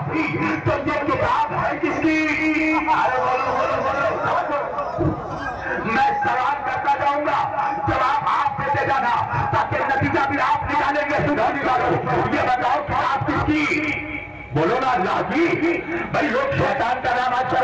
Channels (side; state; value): both; identical; correlation 1.00